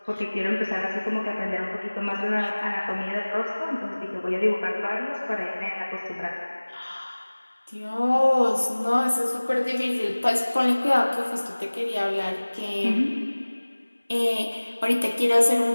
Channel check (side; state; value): both; inverted; correlation -1.00